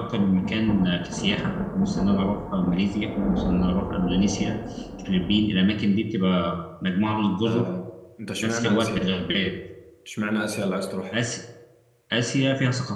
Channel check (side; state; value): both; identical; correlation 1.00